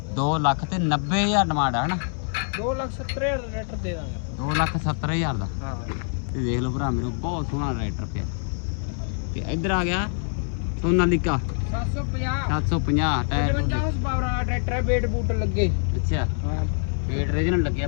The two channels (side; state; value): right; silent; digital silence